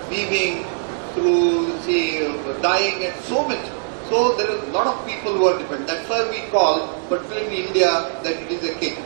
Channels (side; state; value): left; silent; digital silence